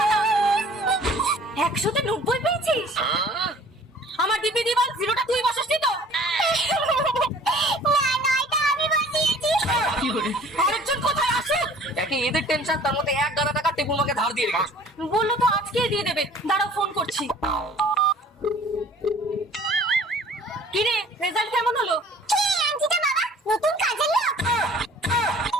না। 100তে 90 পেয়েছিস? আমার দিবি দিবাল জিরোটা তুই বসাসনি তো? না না, এটা আমি বসিয়েছি। আরেকজন কোথায় আসে? দেখি এদের টেনশন, তার মধ্যে 1,000 টাকা টেপু মাকে ধার দিয়ে রেখেছো। বললো তো আজকেই দিয়ে দেবে, দাঁড়াও ফোন করছি। কি রে, রেজাল্ট কেমন হলো? কে আন্টিটা বাবা? নতুন কাজের লোক?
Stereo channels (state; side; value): normal; both; correlation 0.51